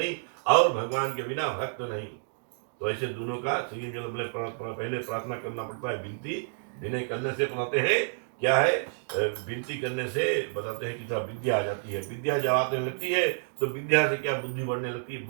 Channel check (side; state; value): left; silent; digital silence